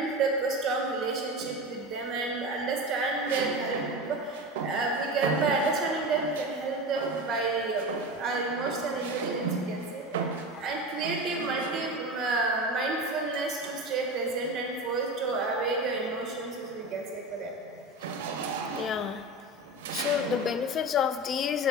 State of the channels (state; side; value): normal; both; correlation 0.26